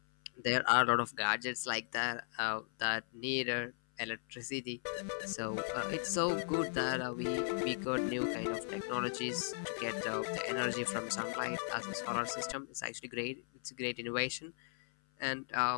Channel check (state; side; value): silent; right; 53 dB below the other